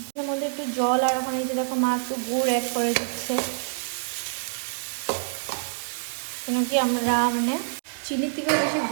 এর মধ্যে একটু জল, আর ওখানে যে দেখো মা একটু গুড় অ্যাড করে দিচ্ছে, কেন কি আমরা মানে চিনির থেকে বেশি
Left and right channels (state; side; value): silent; left; digital silence